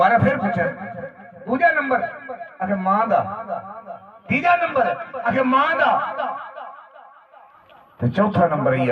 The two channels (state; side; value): identical; both; correlation 1.00